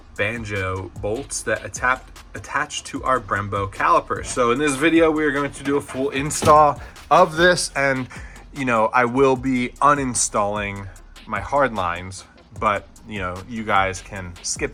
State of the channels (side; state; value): both; identical; correlation 1.00